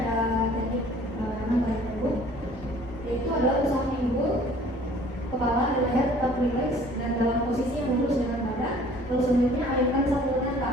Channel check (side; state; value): both; normal; correlation 0.53